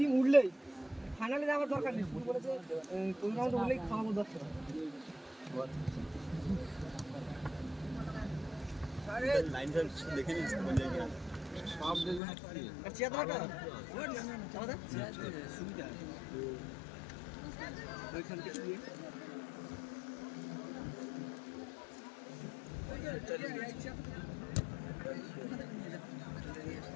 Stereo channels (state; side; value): drops out; right; at 12.2 s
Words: উঠলেই ফাইনালে যাওয়ার দরকার নেই শুধু বলেছে কোন রাউন্ড উঠলেই খাওয়াবো 10 টাকা আরে লাইন দেখে নিস কোন জায়গায় সব দেখুন আর চেয়ারটা চাওদা সুবিধা ওইখান থেকে দিয়ে